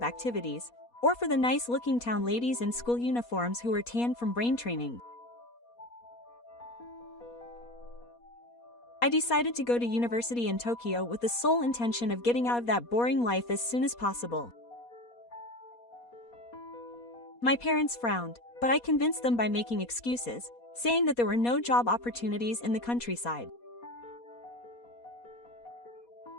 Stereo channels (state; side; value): late; right; 4.2 ms